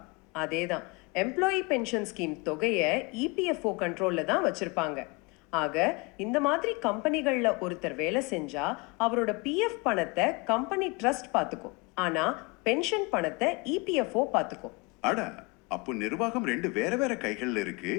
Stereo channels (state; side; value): quieter; right; 27.7 dB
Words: அதேதான். எம்ப்ளாயி பென்ஷன் ஸ்கீம் தொகையை இபிஎஃப்ஓ கண்ட்ரோல்ல தான் வச்சிருப்பாங்க. ஆக இந்த மாதிரி கம்பெனிகள்ல ஒருத்தர் வேலை செஞ்சா அவரோட பிஎஃப் பணத்தை கம்பெனி ட்ரஸ்ட் பாத்துக்கும். ஆனா பென்ஷன் பணத்தை இபிஎஃப்ஓ பாத்துக்கும். அட, அப்போ நிர்வாகம் ரெண்டு வேற வேற கைகள்ல இருக்கு.